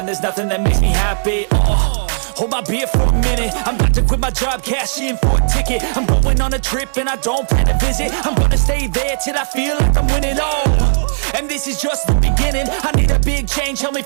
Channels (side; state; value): left; silent; digital silence